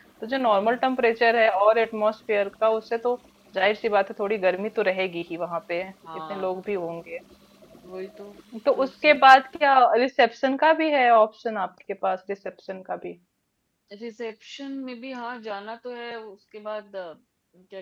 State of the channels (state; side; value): identical; both; correlation 1.00